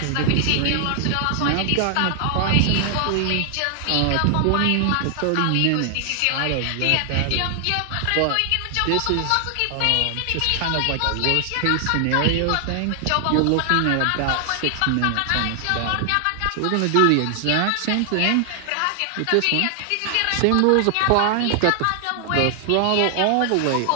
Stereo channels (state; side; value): different; both; correlation 0.00